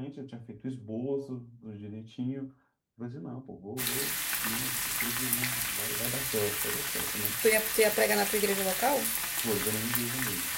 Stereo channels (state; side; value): identical; both; correlation 1.00